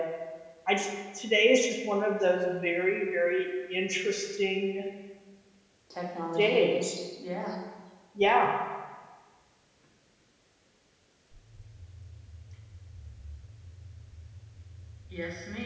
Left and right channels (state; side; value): identical; both; correlation 1.00